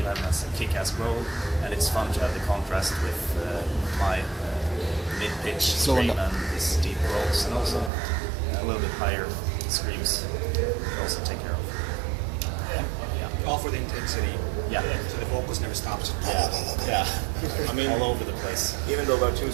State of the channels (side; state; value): left; drops out; at 7.9 s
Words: has a kick-ass role, and it's fun to have the contrast with my mid-pitch scream and his deep rolls, and also a little bit higher screams we also take care of. All for the intensity. Yeah. So the vocals never stops. Yeah. I mean, all over the place. Even though we're two